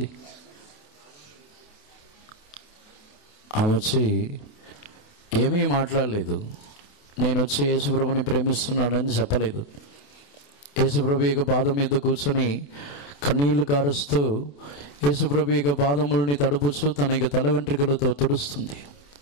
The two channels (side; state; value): right; late; 28 ms